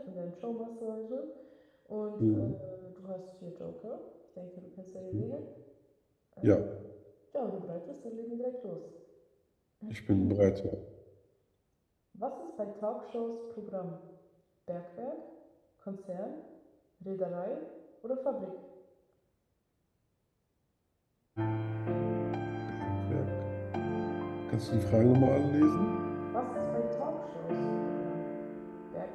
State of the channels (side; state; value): both; identical; correlation 1.00